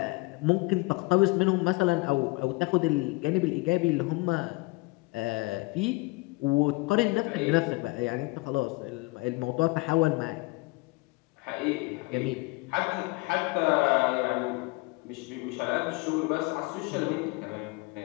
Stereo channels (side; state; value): right; quieter; 25.0 dB